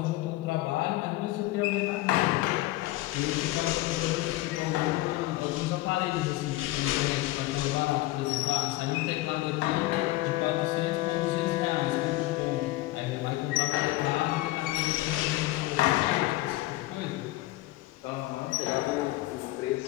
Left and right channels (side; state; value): right; quieter; 17.8 dB